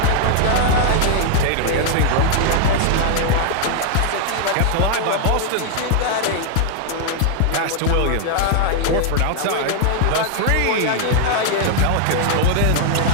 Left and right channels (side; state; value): both; different; correlation 0.00